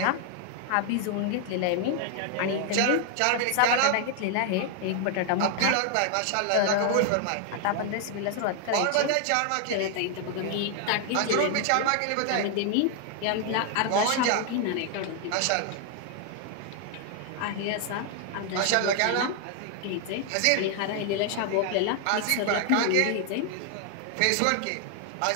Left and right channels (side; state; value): both; different; correlation 0.00